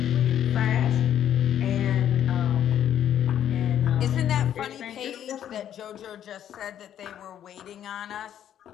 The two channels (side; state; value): right; quieter; 10.3 dB